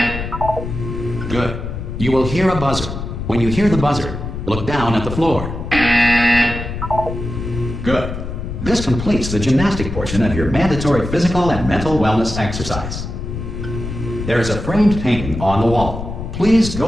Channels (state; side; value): noise; left; rumble, 7 dB below the sound